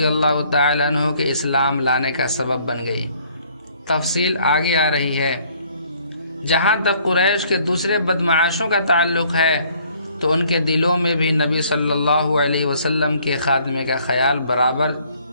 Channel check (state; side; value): inverted; both; correlation -0.61